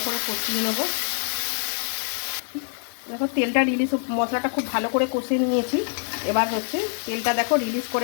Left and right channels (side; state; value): right; silent; 56 dB below the other